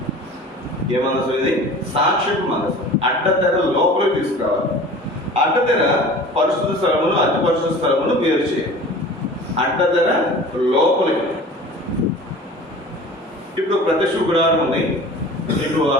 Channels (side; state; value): both; normal; correlation 0.41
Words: ఏ మందసం ఇది? సాక్ష్యపు మందసం. అడ్డతెర లోపలికి తీసుకురావాలి. అడ్డతెర పరిశుద్ధ స్థలమును అతి పరిశుద్ధ స్థలమును వేరు చేయాలి. అడ్డతెర లోపలికి. ఇప్పుడు ప్రత్యక్ష గుడారం ఉంది, మీకు